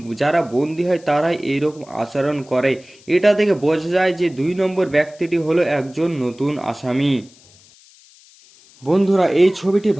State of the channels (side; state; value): left; noise; hiss, 27 dB below the sound